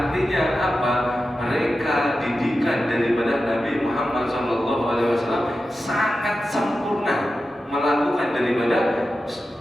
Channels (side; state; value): both; normal; correlation 0.92